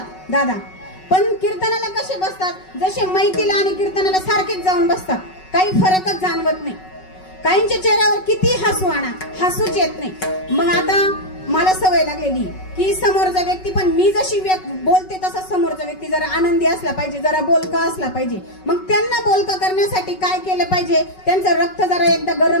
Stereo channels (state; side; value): late; right; 5.3 ms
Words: दादा, पण कीर्तनाला कसे बसतात? जसे मैतीला आणि कीर्तनाला सारखेच जाऊन बसतात. काही फरकच जाणवत नाही. काहींच्या चेहऱ्यावर किती हसू आणा, हसूच येत नाही. मग आता मला सवय लागलेली की समोरचा व्यक्ती पण मी जशी बोलते तसा समोरचा व्यक्ती जरा आनंदी असला पाहिजे, जरा बोलका असला पाहिजे. मग त्यांना बोलका करण्यासाठी काय केलं पाहिजे? त्यांचं रक्त जरा एकदा